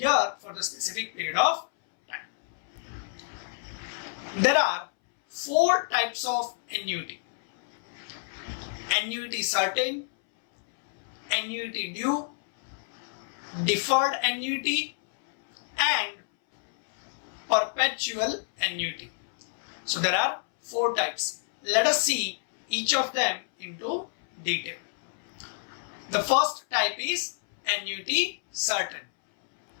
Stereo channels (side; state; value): right; silent; 59 dB below the other